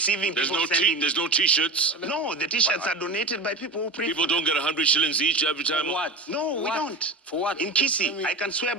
There's no T-shirts. No, the T-shirts are donated by people who pray. People don't get 100 shillings each every time. For what? No, we don't. For what? In Kisii, I can swear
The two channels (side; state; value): left; quieter; 3.1 dB